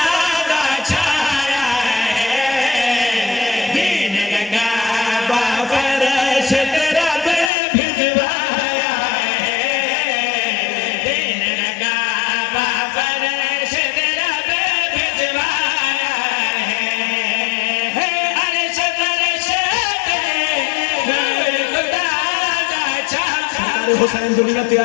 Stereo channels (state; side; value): drops out; right; at 7.5 s